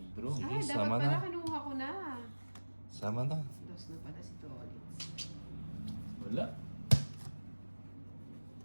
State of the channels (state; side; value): inverted; both; correlation -1.00